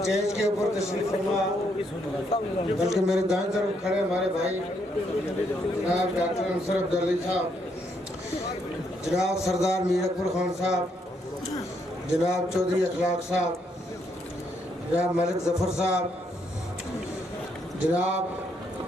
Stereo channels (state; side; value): normal; both; correlation 0.74